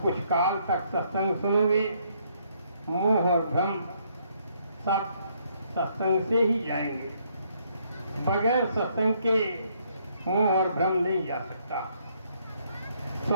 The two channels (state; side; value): inverted; both; correlation -0.70